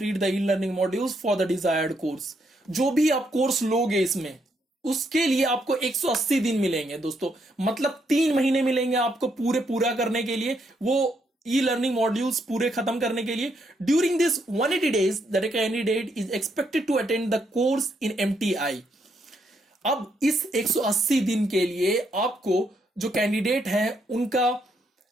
the e learning modules for the desired course. जो भी आप कोर्स लोगे इसमें, उसके लिए आपको 180 दिन मिलेंगे दोस्तों, मतलब 3 महीने मिलेंगे आपको पूरा करने के लिए, वो ई लर्निंग मॉड्यूल्स पूरे खत्म करने के लिए। During this 180 days that candidate is expected to attend the course in MTI. अब इस 180 दिन के लिए आपको जो कैंडिडेट है उनका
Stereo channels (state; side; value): normal; both; correlation 0.76